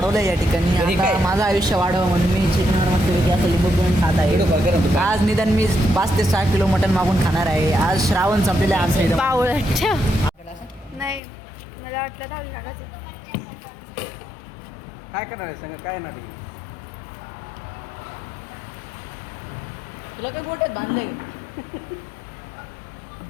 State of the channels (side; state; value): right; drops out; at 11.2 s